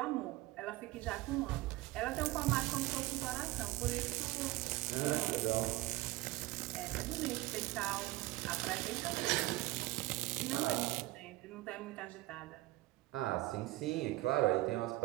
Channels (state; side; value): quieter; left; 19.0 dB